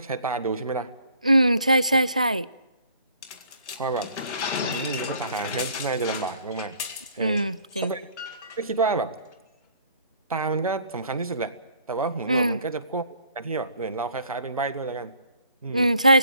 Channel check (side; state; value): both; inverted; correlation -0.59